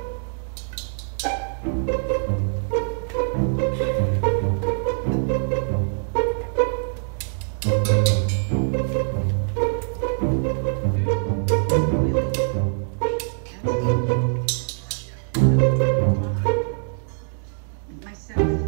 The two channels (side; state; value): left; silent; digital silence